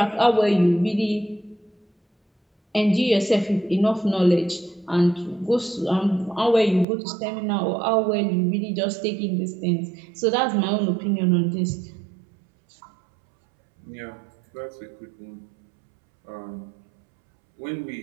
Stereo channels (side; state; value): left; drops out; at 6.9 s